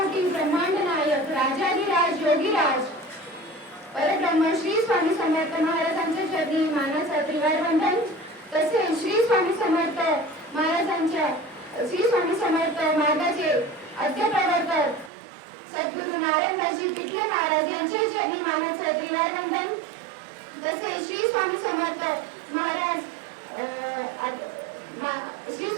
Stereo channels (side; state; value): left; drops out; at 15.1 s